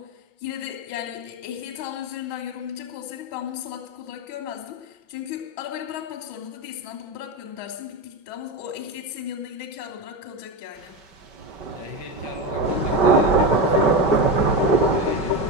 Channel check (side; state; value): right; late; 5.2 ms